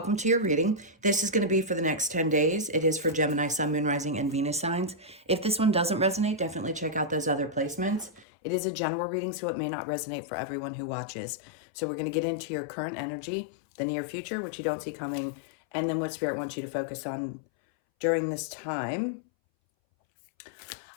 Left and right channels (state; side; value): drops out; right; at 8.2 s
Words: to your reading. This is going to be for the next 10 days. It is for Gemini, Sun, Moon, Rising, and Venus signs. If this one doesn't resonate, definitely check out those other placements. It is a general reading, so it may not resonate for everyone who watches. So we're going to get into your current energy, the near future, which you don't see coming, and then what Spirit wants you to focus on during this time.